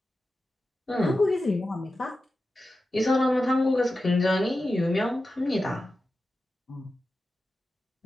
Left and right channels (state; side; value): normal; both; correlation 0.92